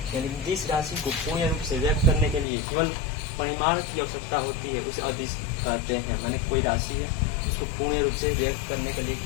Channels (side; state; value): right; drops out; at 2.5 s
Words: यानी जिस राशि को पूर्ण रूप से व्यक्त करने के लिए केवल परिमाण की आवश्यकता होती है उसे अदिश कहते हैं। माने कोई राशि है, उसको पूर्ण रूप से व्यक्त करने के लिए